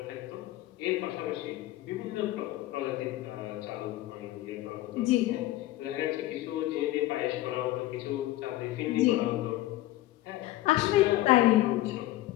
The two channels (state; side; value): quieter; right; 16.1 dB